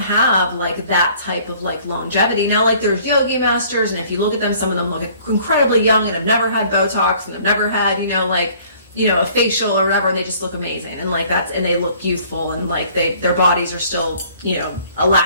like that type of like longevity. Now like there's yogi masters, and if you look at them, some of them look incredibly young and have never had Botox and have never had, you know, like, you know, a facial or whatever, and they just look amazing, and like and they look youthful, and like their bodies are still, you know,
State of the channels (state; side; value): inverted; both; correlation -0.56